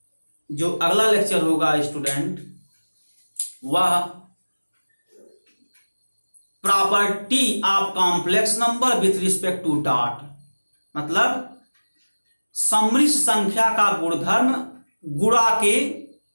जो अगला लेक्चर होगा स्टूडेंट वह property of complex number with respect to dot, मतलब समृद्ध संख्या का गुणधर्म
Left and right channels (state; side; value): inverted; both; correlation -1.00